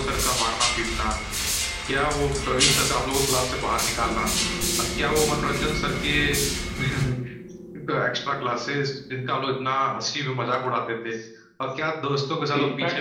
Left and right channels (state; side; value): identical; both; correlation 1.00